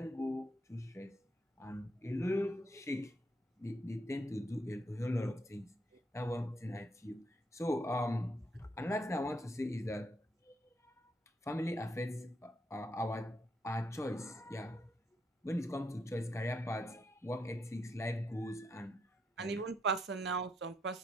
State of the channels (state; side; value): normal; both; correlation 0.78